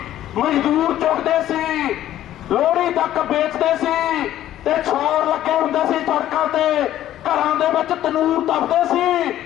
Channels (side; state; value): right; quieter; 12.7 dB